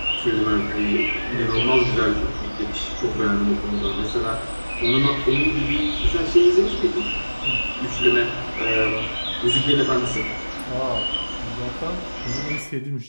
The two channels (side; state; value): both; inverted; correlation -1.00